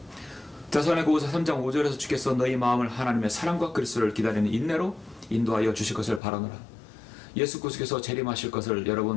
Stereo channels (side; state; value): right; drops out; at 6.2 s